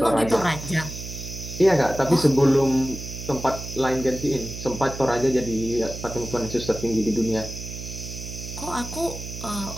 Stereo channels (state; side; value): noise; right; hum, 9 dB below the sound